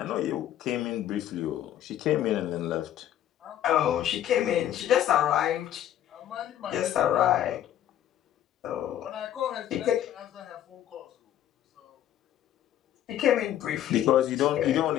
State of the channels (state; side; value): quieter; right; 11.5 dB